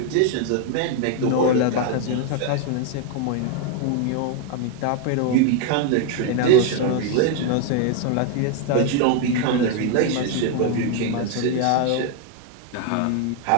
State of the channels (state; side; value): different; both; correlation 0.01